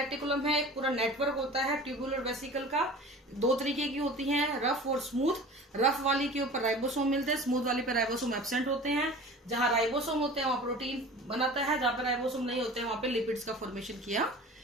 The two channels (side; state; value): both; normal; correlation 0.40